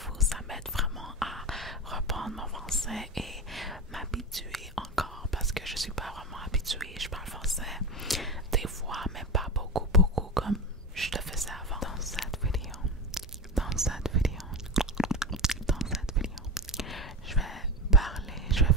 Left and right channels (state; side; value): normal; both; correlation 0.22